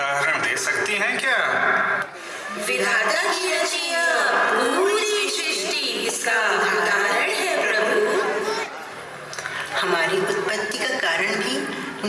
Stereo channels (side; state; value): both; identical; correlation 1.00